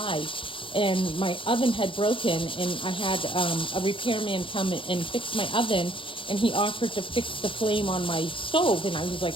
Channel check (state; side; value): late; right; 0.25 ms